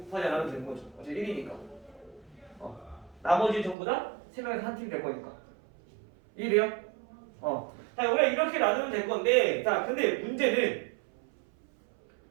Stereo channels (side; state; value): left; drops out; at 3.8 s